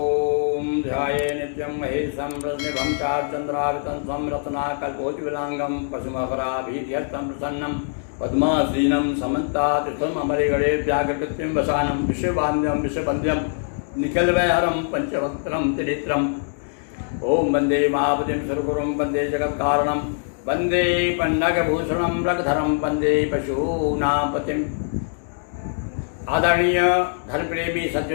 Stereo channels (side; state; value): right; silent; digital silence